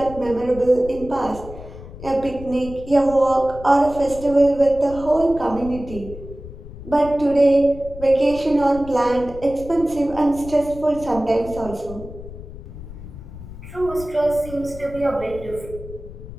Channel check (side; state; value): left; noise; rumble, 14 dB below the sound